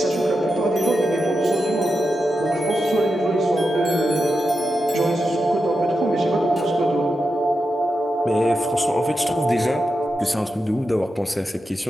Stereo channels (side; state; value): both; normal; correlation 0.89